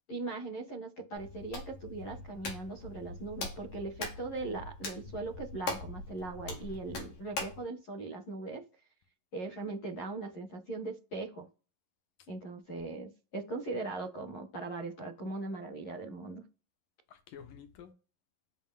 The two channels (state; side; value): late; right; 11 ms